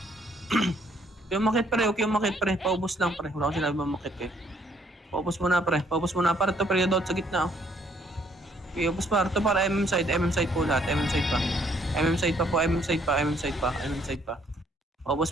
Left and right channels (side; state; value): both; normal; correlation 0.66